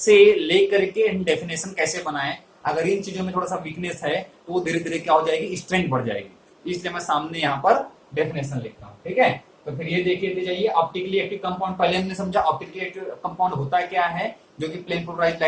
लेकर के डेफिनेशन कैसे बनाएं, अगर इन चीजों में थोड़ा सा वीकनेस है तो वो धीरे धीरे क्या हो जाएगी, स्ट्रेंथ बढ़ जाएगी। इसलिए मैं सामने यहाँ पर डेफिनेशन लिखता हूँ। ठीक है, तो फिर ये देखिए जाइए, ऑप्टिकली एक्टिव कंपाउंड पहले हमने समझा, ऑप्टिकली एक्टिव कंपाउंड होता क्या है, जो कि प्लेन पोलराइज्ड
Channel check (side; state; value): both; identical; correlation 1.00